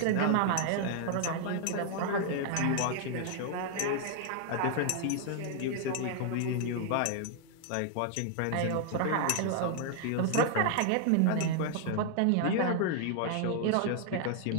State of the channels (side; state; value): both; different; correlation 0.00